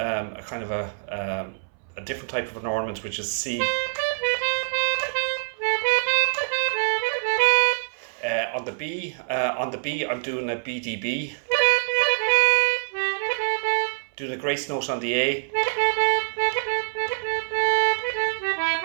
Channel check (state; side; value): silent; left; 60 dB below the other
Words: kind of a different type of an ornament, which is C. On the B, I'm doing a BDB. Doing a grace note on the A.